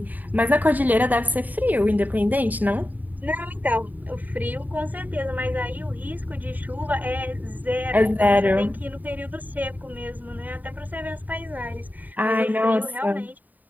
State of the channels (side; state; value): left; late; 0.082 ms